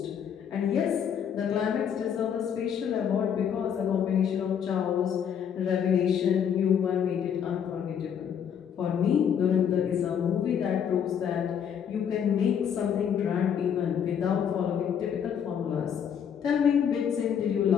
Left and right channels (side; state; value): right; quieter; 8.2 dB